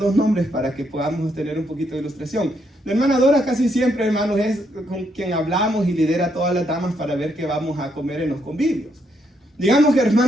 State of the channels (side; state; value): both; normal; correlation 0.75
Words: nombres para que podamos tener un poquito de ilustración. La hermana Dora casi siempre, hermanos, es con quien hablamos y lidera a todas las damas para ver qué vamos a comer en los convivios. Digamos que